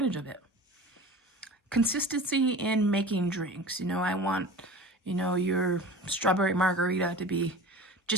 of it. Consistency in making drinks. I want, your strawberry margarita to be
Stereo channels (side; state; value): both; normal; correlation 0.37